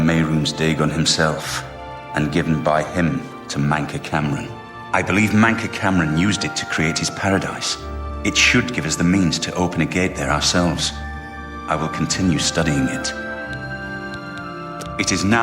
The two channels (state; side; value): identical; both; correlation 1.00